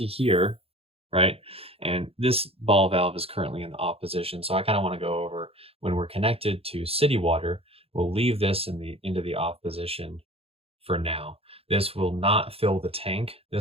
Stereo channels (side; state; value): left; late; 0.28 ms